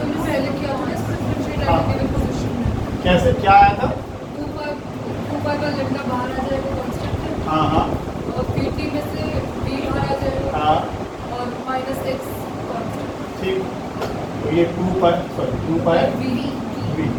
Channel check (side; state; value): both; identical; correlation 1.00